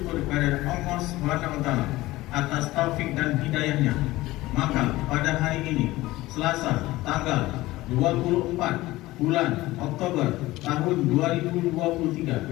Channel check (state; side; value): quieter; right; 18.2 dB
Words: kepada Allah SWT atas taufik dan hidayahnya, maka pada hari ini Selasa tanggal 24 bulan Oktober tahun